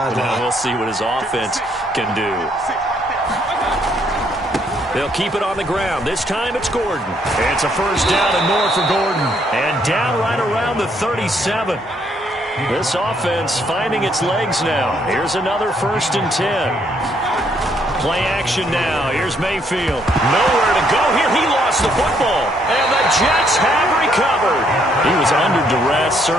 Now we'll see what his offense can do. They'll keep it on the ground. This time it's Gordon. It's a first down and more for Gordon. And down right around the 37. This offense finding its legs now. Here's another 1st and 10. Play action now. Here's Mayfield. Nowhere to go here. He lost the football. And the Jets have recovered. He was under duress,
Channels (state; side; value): normal; both; correlation 0.70